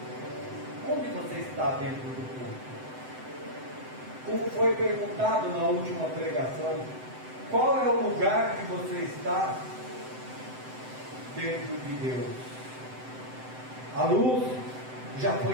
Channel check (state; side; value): late; left; 7.8 ms